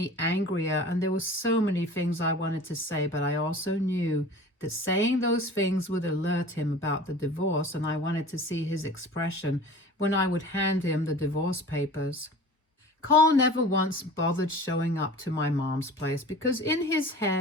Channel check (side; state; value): both; normal; correlation 0.41